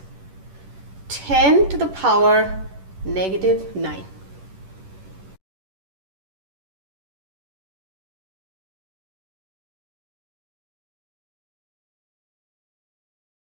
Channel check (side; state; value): left; late; 10 ms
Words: 10 to the power -9.